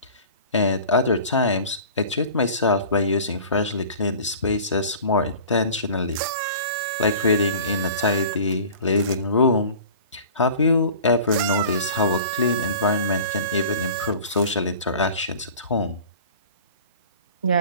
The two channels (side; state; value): both; inverted; correlation -0.42